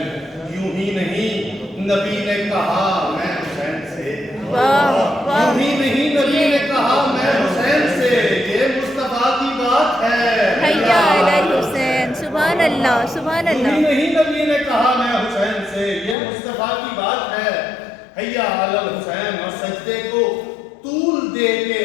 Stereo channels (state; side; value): drops out; right; at 16.2 s